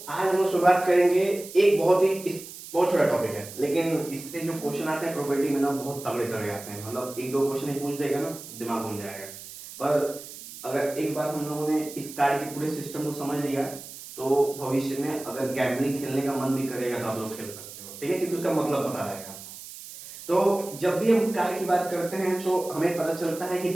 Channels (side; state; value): right; noise; hiss, 14 dB below the sound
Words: आज हम लोग शुरुआत करेंगे। एक बहुत छोटा टॉपिक है, लेकिन इससे जो क्वेश्चन आते हैं प्रोबेबिलिटी में ना बहुत तगड़े तगड़े आते हैं। मतलब एक दो क्वेश्चन ही पूछ देगा ना, दिमाग घूम जाएगा। पर अगर एक बार हम लोगों ने इस कार्ड के पूरे सिस्टम को समझ लिया तो भविष्य में अगर गैम्बलिंग खेलने का मन भी करेगा तो आप लोग खेल सकते हो, ठीक है, क्योंकि उसका मतलब पता रहेगा। तो जब भी हम कार्ड की बात करते हैं तो हमें पता चलता है कि